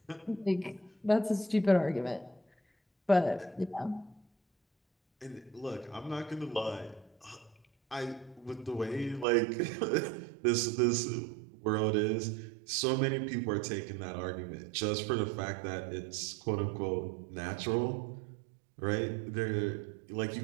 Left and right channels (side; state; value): left; drops out; at 9.2 s